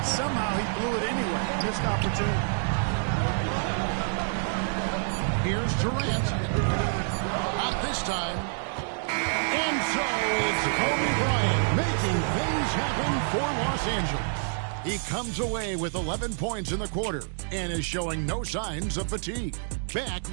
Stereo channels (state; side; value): silent; left; digital silence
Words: somehow he blew it anyway. Missed opportunity. Here's Durant. Not this time. And so it's Kobe Bryant making things happen for Los Angeles. He comes away with 11 points in the quarter and is showing no signs of fatigue. Back